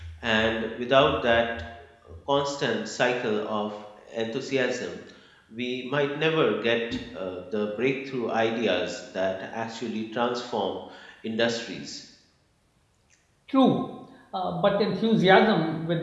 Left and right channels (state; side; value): identical; both; correlation 1.00